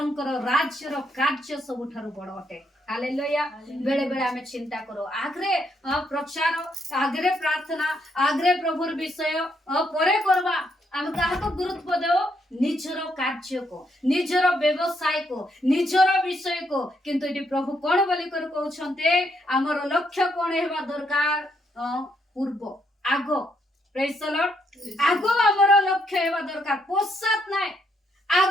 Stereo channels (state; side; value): normal; both; correlation 0.75